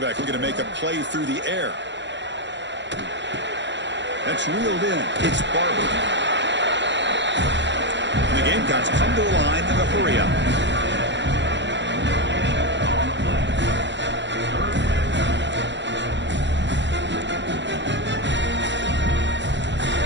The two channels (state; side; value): late; left; 0.52 ms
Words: looking to make a play through the air. That's reeled in. It's Barber. And the Gamecocks come to the line in a hurry up.